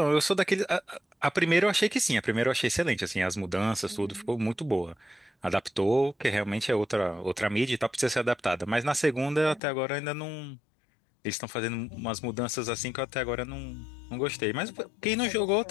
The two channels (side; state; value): right; drops out; at 9.6 s